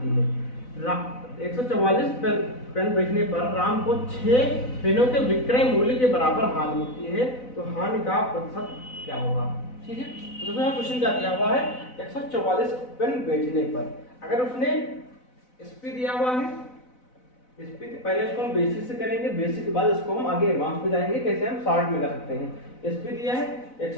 है। 144 पेन बेचने पर राम को 6 पेनों के विक्रय मूल्य के बराबर हानि होती है, तो हानि का प्रतिशत क्या होगा। ठीक है, तो देखो क्वेश्चन क्या दिया हुआ है, 144 पेन बेचने पर अगर उसने एसपी दिया हुआ है, एसपी पहले इसको हम बेसिक से करेंगे, बेसिक के बाद इसको हम आगे एडवांस पे जाएंगे, कैसे हम शॉर्ट में कर सकते हैं। एसपी दिया है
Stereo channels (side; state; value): right; late; 4.0 ms